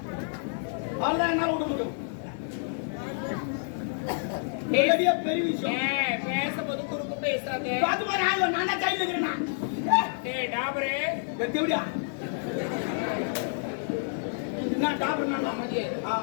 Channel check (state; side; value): silent; right; 59 dB below the other